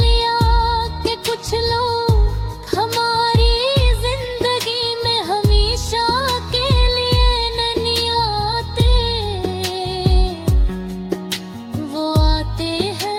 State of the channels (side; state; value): both; identical; correlation 1.00